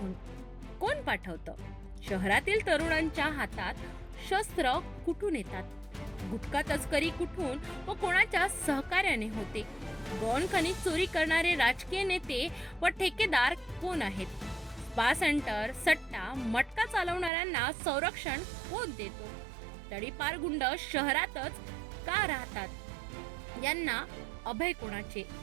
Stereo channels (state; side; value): drops out; left; at 17.3 s